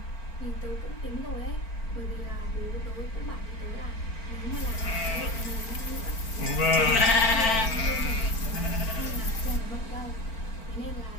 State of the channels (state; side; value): late; right; 4.4 ms